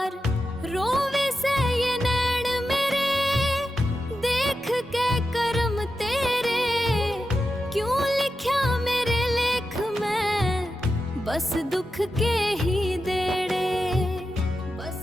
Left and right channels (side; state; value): both; normal; correlation 0.90